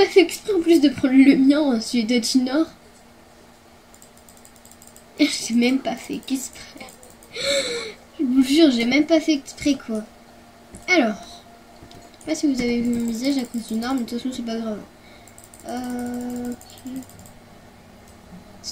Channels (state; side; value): identical; both; correlation 1.00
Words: fait exprès en plus de prendre le mien, celui de Junior. J'ai même pas fait exprès. Je vous jure, j'ai même pas fait exprès quoi. Alors, je sais pas si vous avez vu mon visage à cause d'une arme, mais de toute façon c'est pas grave. Ok.